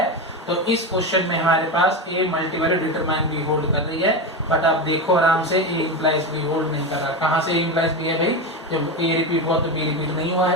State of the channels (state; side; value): normal; both; correlation 0.18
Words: तो इस क्वेश्चन में हमारे पास A multivalued determine B hold कर रही है, बट आप देखो आराम से A इंप्लाइज B होल्ड नहीं कर रहा। कहाँ से A इंप्लाइज B है भाई? जब A रिपीट हुआ तो B रिपीट नहीं हुआ